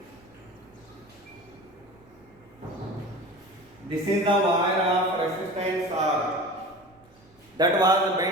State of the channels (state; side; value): noise; right; rumble, 30 dB below the sound